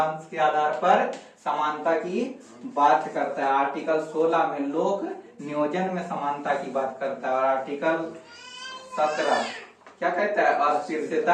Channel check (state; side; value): identical; both; correlation 1.00